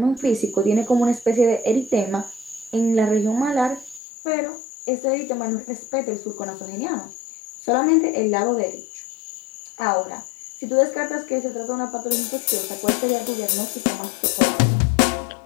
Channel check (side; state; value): right; drops out; at 4.0 s